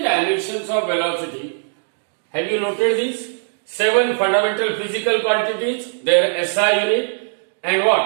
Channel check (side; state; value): left; silent; digital silence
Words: dimensions of velocity, have you noted these 7 fundamental physical quantities, their SI unit and